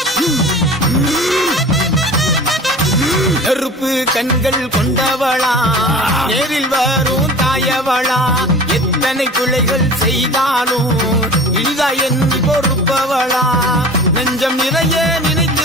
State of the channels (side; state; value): both; normal; correlation 0.40